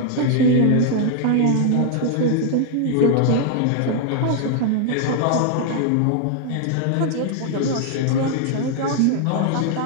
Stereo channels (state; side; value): different; both; correlation 0.00